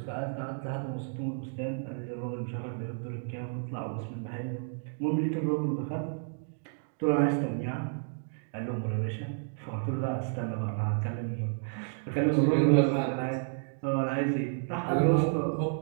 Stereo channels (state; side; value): silent; left; digital silence